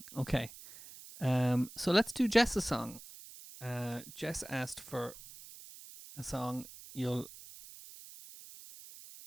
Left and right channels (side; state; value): right; noise; hiss, 16 dB below the sound